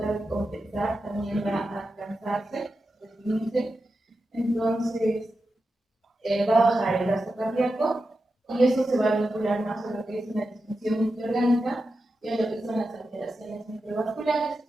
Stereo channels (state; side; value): normal; both; correlation 0.90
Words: de compensar, también va a cansarse, deprimirse, entonces va a bajar el gasto cardíaco y eso se va a vincular más a lo que es una disfunción multiorgánica y a lo que son las alteraciones microvasculares.